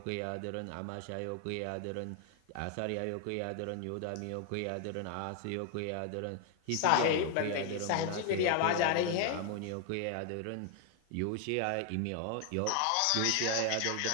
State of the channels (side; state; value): both; different; correlation 0.00